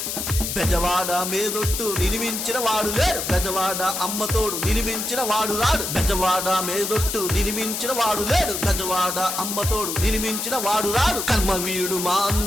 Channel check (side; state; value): left; noise; hiss, 3 dB below the sound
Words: బెజవాడ మేదొట్టు నినిమించిన వాడు లేడు, బెజవాడ అమ్మతోడు నినిమించిన వాడు రాడు. బెజవాడ మేదొట్టు నినిమించిన వాడు లేడు, బెజవాడ అమ్మతోడు నినిమించిన వాడు రాడు. కర్మవీరుడు మా